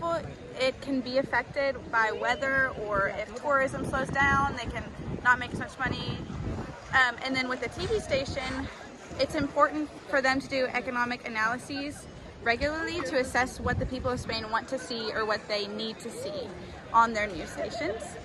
it can be affected by weather, or if tourism slows down, they can not make as much money. And then with the TV station, it's important for them to do economic analyses regularly to assess what the people of Spain want to see or what they need to see on their news stations.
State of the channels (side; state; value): both; identical; correlation 1.00